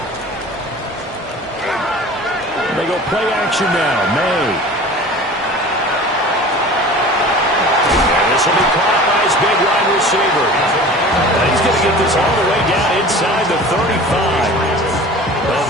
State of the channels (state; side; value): normal; both; correlation 0.40